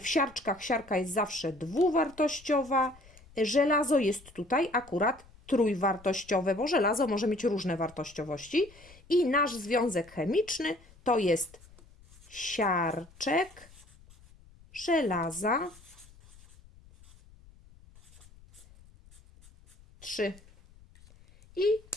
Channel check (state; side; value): noise; left; rumble, 25 dB below the sound